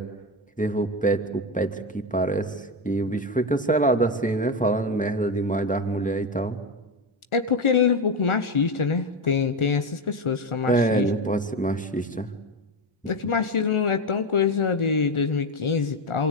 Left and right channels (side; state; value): both; normal; correlation 0.14